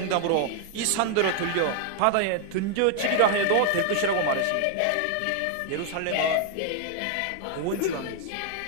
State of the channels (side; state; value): both; different; correlation 0.00